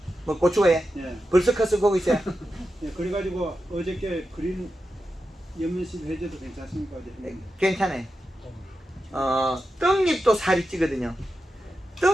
뭐 고추에 예. 벌써 컸어 보고 있어요. 예, 그래가지고 어저께 그린 연면십 해줘도 괜찮습니까? 어제 괜찮아요. 떡잎도 살이 찌거든요.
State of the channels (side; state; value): both; normal; correlation 0.90